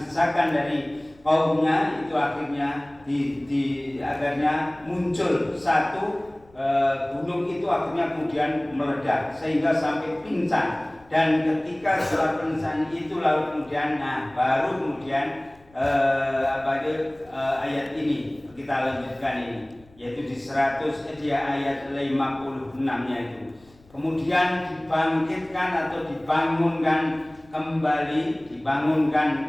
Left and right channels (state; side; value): noise; left; rumble, 28 dB below the sound